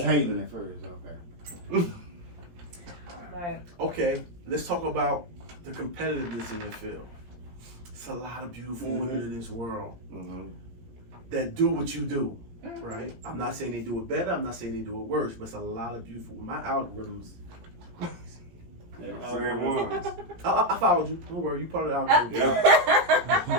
that. hating at first. Okay. But Okay, let's talk about the competitiveness in your field. It's a lot of beautiful women in this world that do what you do, right? I'm not saying they do it better. I'm not saying they do it worse, but it's a lot of beautiful. My algorithms. Same ones. I followed you. Don't worry, you part of the algorithm,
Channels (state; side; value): late; left; 17 ms